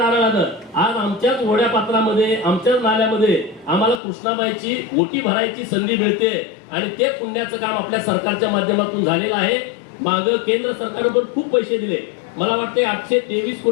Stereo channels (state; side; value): drops out; right; at 4.0 s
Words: आज आमच्याच ओढ्या पात्रामध्ये आमच्याच नाल्यामध्ये आम्हाला कृष्णाबाईची ओटी भरायची संधी मिळते आणि ते पुण्याचं काम आपल्या सरकारच्या माध्यमातून झालेलं आहे. मागं केंद्र सरकारनं पण खूप पैसे दिले, मला वाटते 823